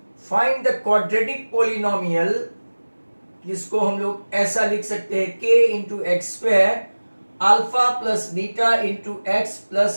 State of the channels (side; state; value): both; inverted; correlation -1.00